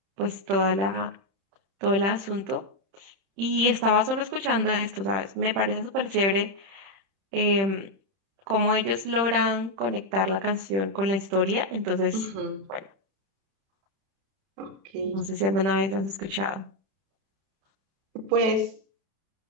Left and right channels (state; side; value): late; left; 31 ms